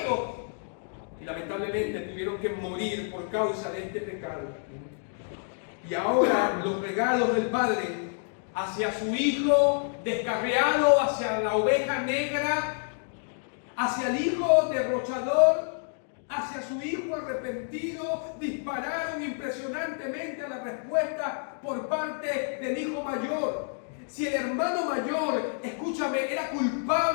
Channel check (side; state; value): right; silent; 59 dB below the other